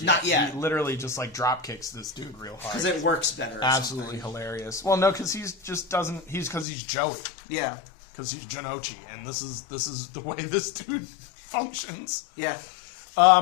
yet. Not yet. He literally just like drop kicks this dude real hard Because it works better. Absolutely hilarious. Well, no, because he's just doesn't. Because he's Joey. Yeah. Because he's Janochi, and this is the way this dude functions. Yeah.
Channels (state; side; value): drops out; right; at 6.7 s